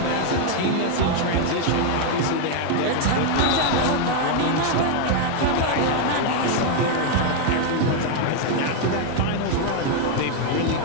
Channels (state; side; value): different; both; correlation 0.01